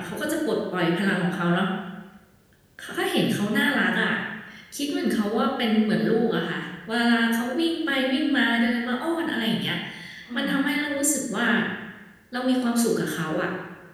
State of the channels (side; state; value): both; identical; correlation 1.00